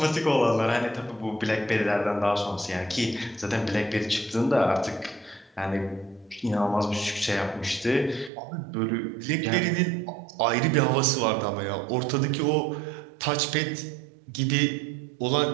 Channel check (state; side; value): drops out; left; at 8.3 s